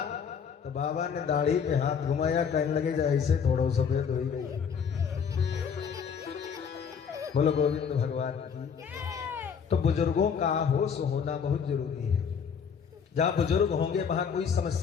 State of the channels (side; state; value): right; quieter; 6.8 dB